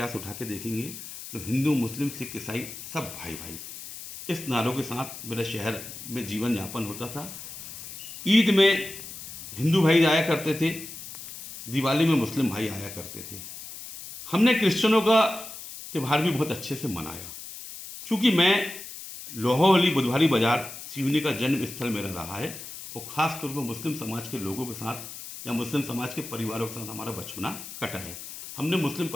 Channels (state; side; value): noise; left; hiss, 12 dB below the sound